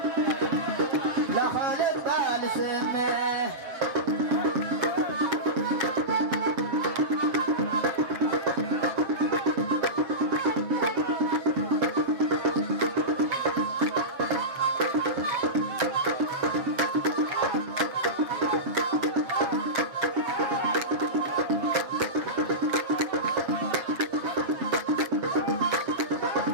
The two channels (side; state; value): left; late; 7.5 ms